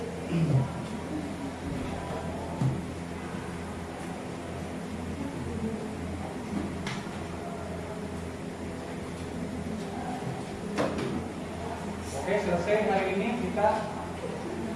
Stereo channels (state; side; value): identical; both; correlation 1.00